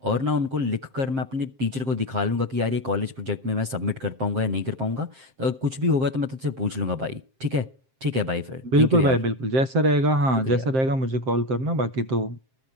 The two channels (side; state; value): left; late; 7.6 ms